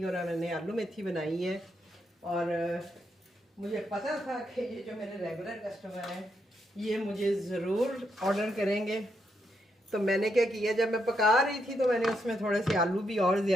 और मैंने आलू मेथी बनाई है। और मुझे पता था कि ये जो मेरे रेगुलर कस्टमर हैं ये मुझे ज़रूर ऑर्डर करेंगे। तो मैंने क्या किया, जब मैं पका रही थी तो मैंने उसमें थोड़े से आलू भी और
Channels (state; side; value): normal; both; correlation 0.80